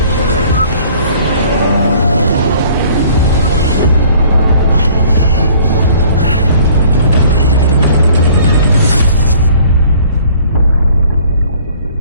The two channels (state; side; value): inverted; both; correlation -0.54